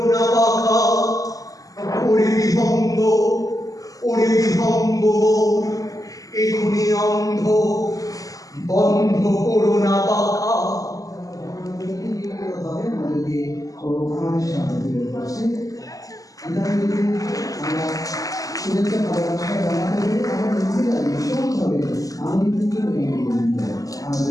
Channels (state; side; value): late; right; 0.17 ms